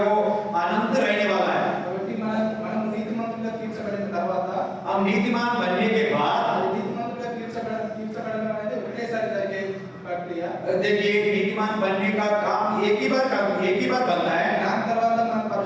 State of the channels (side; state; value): both; identical; correlation 1.00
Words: वो अनंत रहने वाला है। కాబట్టి మనం నీతిమంతులుగా తీర్చబడిన తర్వాత हम नीतिमान बनने के बाद అది నీతిమంతులుగా తీర్చబడడం అనేది ఒకేసారి జరిగే ప్రక్రియ. देखिए, नीतिमान बनने का काम एक ही बार बनता है, దాని తర్వాత మనం